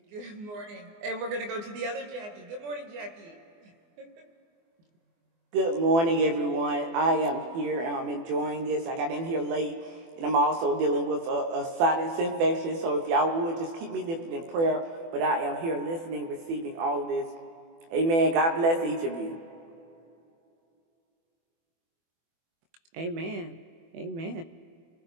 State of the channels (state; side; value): late; left; 24 ms